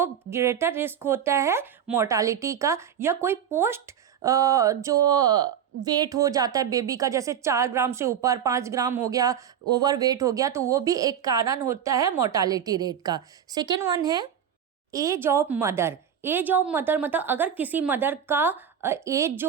ग्रेटर रिस्क होता है मोर्टालिटी का। या कोई पोस्ट जो वेट हो जाता है बेबी का, जैसे 4 ग्राम से ऊपर 5 ग्राम हो गया, ओवर वेट हो गया, तो वो भी एक कारण होता है मोर्टालिटी रेट का। सेकेंड वन है age of mother. Age of mother मतलब अगर किसी मदर का एज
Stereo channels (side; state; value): left; quieter; 8.7 dB